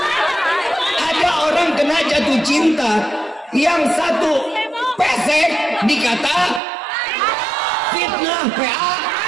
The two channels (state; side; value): drops out; left; at 6.6 s